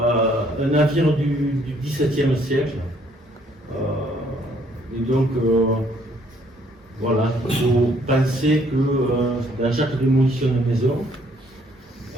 navire du XVIIe siècle. Et donc, voilà, il faut penser que dans chaque démolition de maison,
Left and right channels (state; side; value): normal; both; correlation 0.65